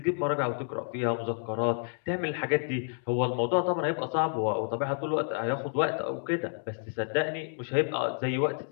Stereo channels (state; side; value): silent; right; digital silence